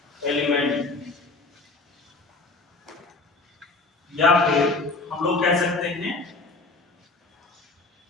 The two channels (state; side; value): quieter; right; 3.5 dB